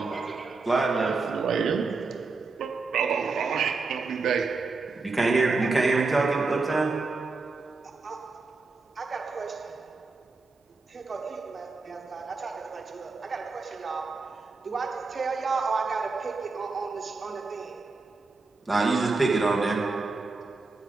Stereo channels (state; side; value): quieter; left; 3.9 dB